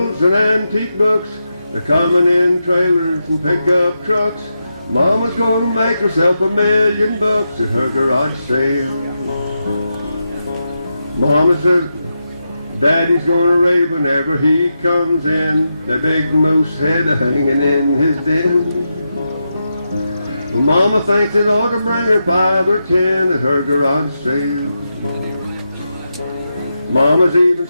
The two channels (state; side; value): inverted; both; correlation -0.87